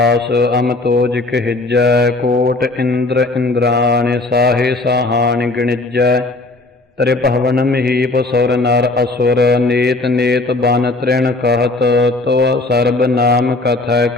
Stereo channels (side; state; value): right; quieter; 3.0 dB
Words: ਅਮਤੋਜ ਕਹਿਜੈ। ਕੋਟ ਇੰਦਰ ਇੰਦਰਾਣ ਸਾਹੇ ਸਾਹਾਣ ਗਣਿਜੈ। ਤ੍ਰਿਭਵਨ ਮਹੀਪ ਸੁਰ ਨਰ ਅਸੁਰ ਨੇਤ ਨੇਤ ਬਨ ਤ੍ਰਿਣ कहत। ਤੋ ਸਰਬ ਨਾਮ ਕਥੈ